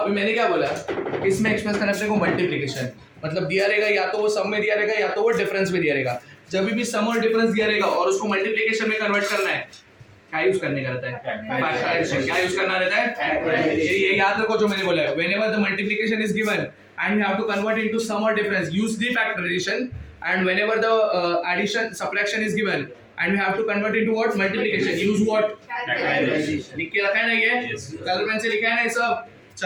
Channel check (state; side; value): identical; both; correlation 1.00